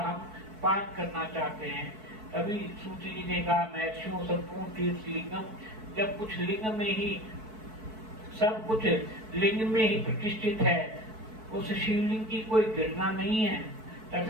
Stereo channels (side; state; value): left; late; 4.6 ms